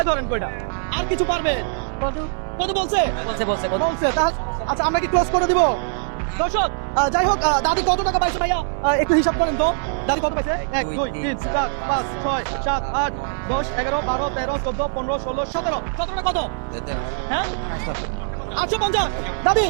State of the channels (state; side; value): silent; left; 60 dB below the other